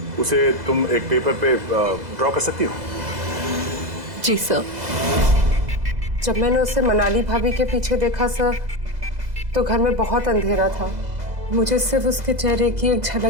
उसे तुम एक पेपर पे ड्रॉ कर सकती हो? जी सर। जब मैंने उसे मनाली भाभी के पीछे देखा सर, तो घर में बहुत अंधेरा था। मुझे सिर्फ उसके चेहरे की एक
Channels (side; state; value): left; late; 2.0 ms